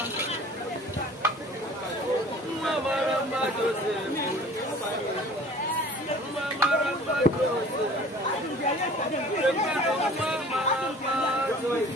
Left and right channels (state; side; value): normal; both; correlation 0.47